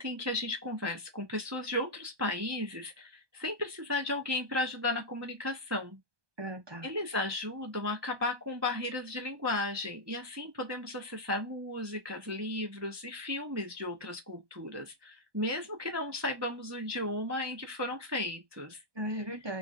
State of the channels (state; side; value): late; left; 1.2 ms